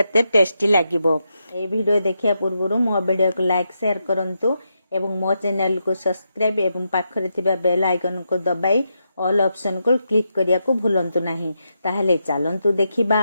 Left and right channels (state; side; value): inverted; both; correlation -0.84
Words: टेस्टी लागिबो। ए वीडियो देखिया पूर्व मो वीडियो को लाइक शेयर करंतु एवं मो चैनल को सब्सक्राइब एवं पाखरे थिबा बेल आइकन को दबाई ऑल ऑप्शन को क्लिक करिया को भूलंतु नहीं। ताहले चलंतु देखिबा